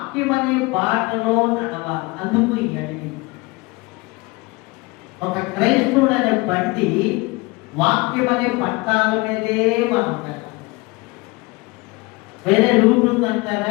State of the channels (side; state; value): right; quieter; 24.7 dB